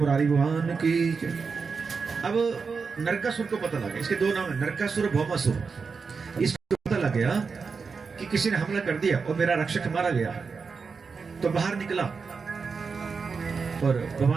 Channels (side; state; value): left; quieter; 5.1 dB